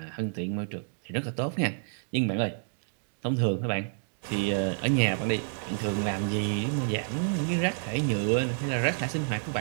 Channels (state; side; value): silent; left; digital silence